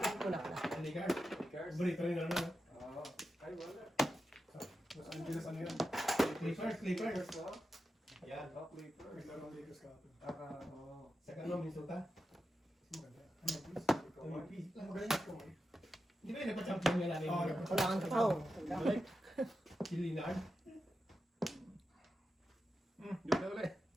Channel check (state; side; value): normal; both; correlation 0.90